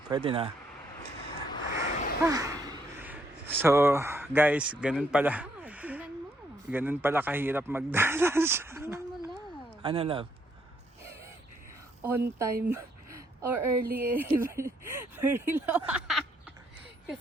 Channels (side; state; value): both; normal; correlation 0.72